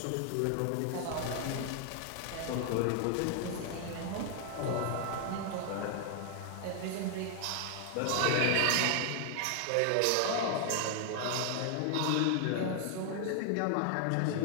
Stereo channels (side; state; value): both; different; correlation 0.00